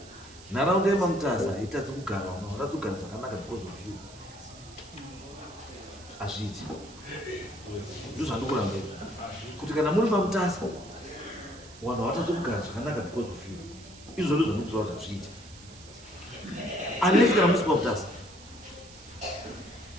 Nharaunda yeMamutasa itadzi kugara, unatadzi kugara zvakanaka because of you. Azviti. Ndizvo zvandikuramba kuti kana muri Mamutasa vanhu havatadzi kugara zvakanaka because of you. Izvo ndizvo zvandikutaura kuti azviiti. Unless kana musi Mamutasa.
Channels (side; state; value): right; noise; hiss, 20 dB below the sound